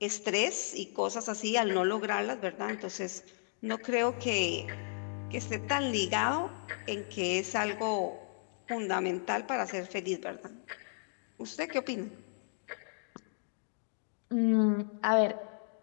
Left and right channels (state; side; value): silent; right; digital silence